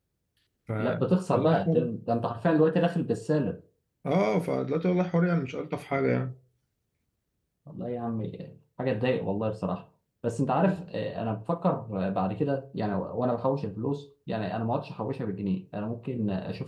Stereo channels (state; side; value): identical; both; correlation 1.00